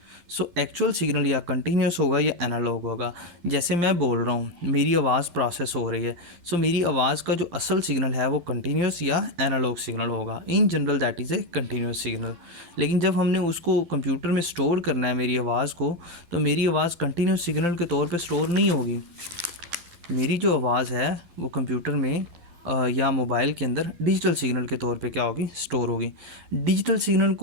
सो एक्चुअल सिग्नल या कंटिन्यूस होगा या एनालॉग होगा। जैसे मैं बोल रहा हूँ, मेरी आवाज़ प्रोसेस हो रही है, सो मेरी आवाज़ का जो असल सिग्नल है वो कंटिन्यूस या एनालॉग सिग्नल होगा। In general that is a continuous signal. लेकिन जब हमने उसको कंप्यूटर में स्टोर करना है मेरी आवाज़ को, तो मेरी आवाज़ कंटिन्यूस सिग्नल के तौर पे स्टोर नहीं होगी। मेरी जो आवाज़ है वो कंप्यूटर में या मोबाइल के अंदर डिजिटल सिग्नल के तौर पे क्या होगी, स्टोर होगी। डिजिटल सिग्नल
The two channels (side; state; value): left; late; 12 ms